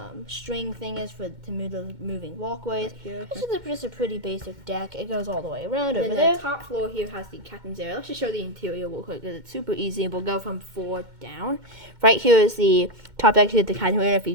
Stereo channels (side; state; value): left; late; 2.1 ms